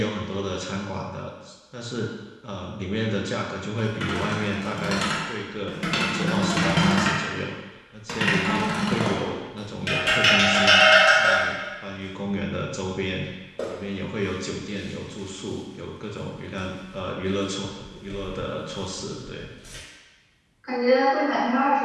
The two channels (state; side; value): identical; both; correlation 1.00